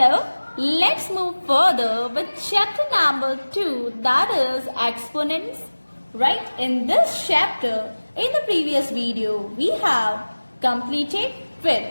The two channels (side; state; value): both; inverted; correlation -1.00